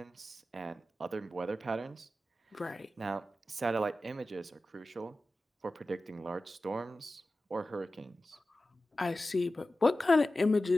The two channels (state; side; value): normal; both; correlation 0.94